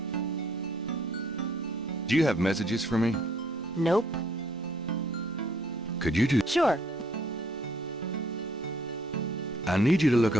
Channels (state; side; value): normal; both; correlation 0.64